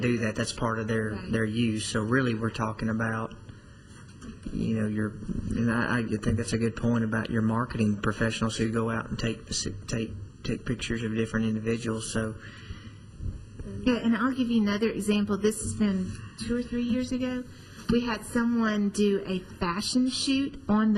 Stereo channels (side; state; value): both; identical; correlation 1.00